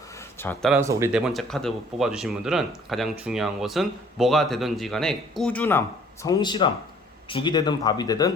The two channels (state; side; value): normal; both; correlation 0.56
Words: 자, 따라서 우리 네 번째 카드 뽑아주신 분들은 가장 중요한 것은 뭐가 되든지 간에 꾸준함, 성실함, 죽이 되든 밥이